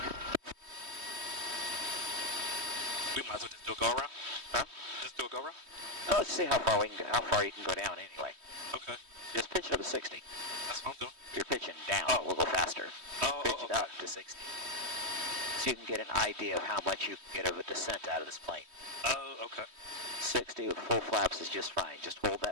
We might as well just do a go around. Huh? Just do a go around? Oh, let's see how far you can go down anyway. Okay. Just pitch it up to 60. That's what I'm doing. If you're pitching down, Oh. we'll go faster. Pitch it Okay. up to 60. So you can get an idea of how much you can get of a descent out of this plane. Oh, okay. 60 with full flaps is just fine. Just hold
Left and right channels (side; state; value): left; late; 3.2 ms